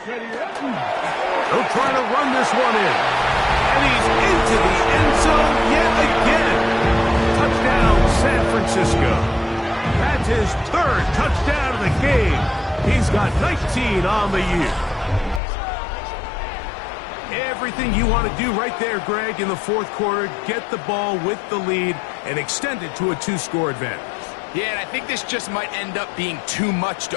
They'll try to run this one in. And he's into the end zone yet again. Touchdown, San Francisco. That's his 3rd touchdown of the game. He's got 19 on the year. Everything you want to do right there, Greg, in the 4th quarter. Get the ball with the lead and extend it to a 2-score advantage. Yeah, and I think this just might end up being too much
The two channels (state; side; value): drops out; right; at 15.4 s